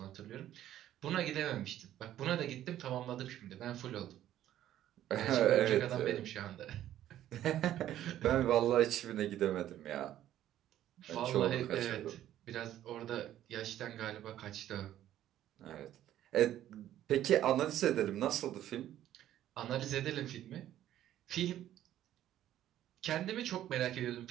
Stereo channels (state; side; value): quieter; left; 12.3 dB